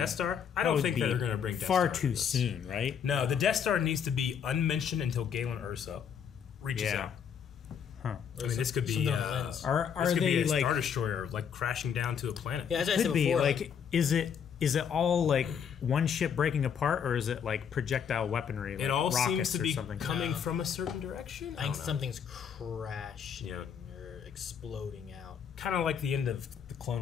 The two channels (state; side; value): quieter; right; 7.6 dB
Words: Star? I don't think that they're going to bring Death far Star too soon, right? No, the Death Star needs to be unmentioned until Galen Erso reaches out. Huh. I mean, this could be are this could they be a like Star Destroyer like crashing down to a planet? Yeah, as I could said be before, like is it all like one ship breaking apart, or is it like projectile weaponry? Like it all seems to be something? coming from a certain direction. I think something's crashing or exploding out. Kind of like the end of the